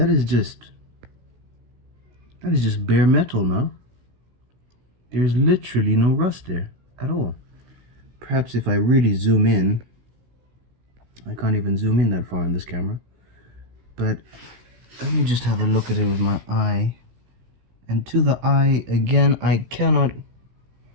is just bare metal now. There's literally no rust there at all. Perhaps if I really zoom in, I can't even zoom in that far on this camera, but let me just have a look at it with my eye. And to the eye, again, I cannot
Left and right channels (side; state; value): left; late; 16 ms